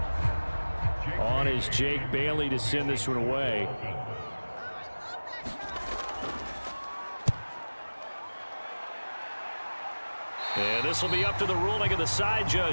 On is Jake Bailey to send this one away. And this will be up to the ruling of the side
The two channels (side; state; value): both; inverted; correlation -1.00